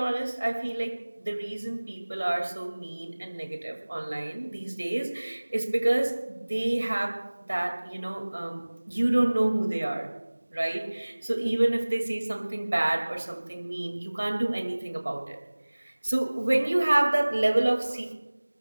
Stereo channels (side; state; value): both; inverted; correlation -1.00